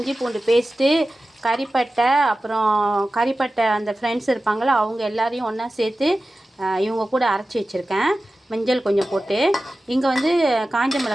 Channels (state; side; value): normal; both; correlation 0.95